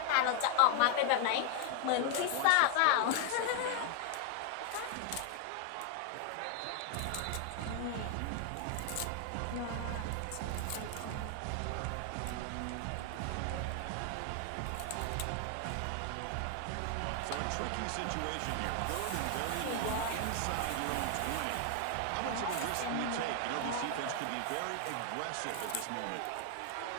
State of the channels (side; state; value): both; different; correlation 0.00